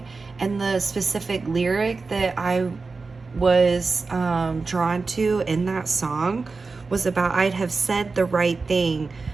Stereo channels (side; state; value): left; quieter; 4.1 dB